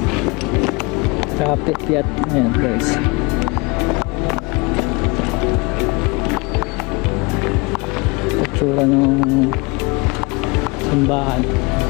Kapit-piat. Ayan guys. Itsura ng simbahan.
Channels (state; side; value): quieter; right; 27.0 dB